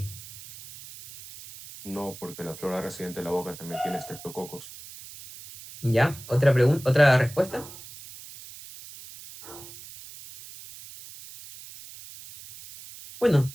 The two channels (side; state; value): right; noise; hiss, 16 dB below the sound